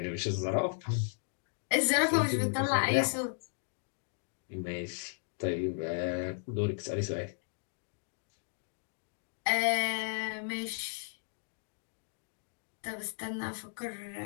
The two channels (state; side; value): silent; right; digital silence